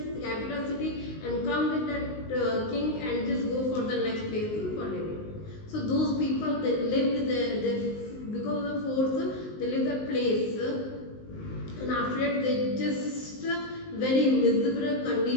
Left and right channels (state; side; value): late; right; 19 ms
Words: capital city and come with that king and just go for the next place for living. So those people, they lived there, because of the force they lived the place, and after that they just very miserable